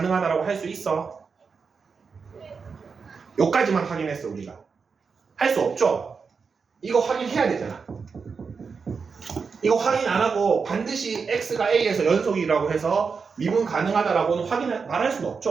할 수 있어? 여기까지만 확인했어, 우리가. 할 수 없죠? 이거 확인해야 되잖아. 이거 확인 안 하고 반드시 x가 a에서 연속이라고 해서 미분 가능하다라고는 말할 수는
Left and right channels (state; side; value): quieter; left; 5.3 dB